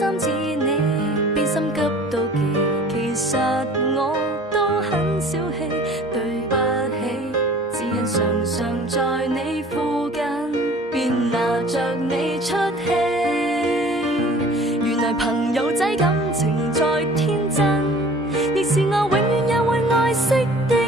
似你，變心急妒忌。其實我都很小氣，對不起，只因常常在你附近，便拿着你出氣。原來朋友仔感情再天真，亦是我永遠也會愛惜的人。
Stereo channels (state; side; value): normal; both; correlation 0.48